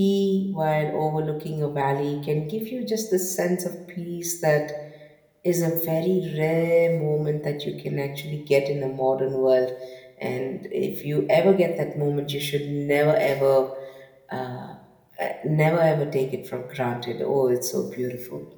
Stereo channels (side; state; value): both; identical; correlation 1.00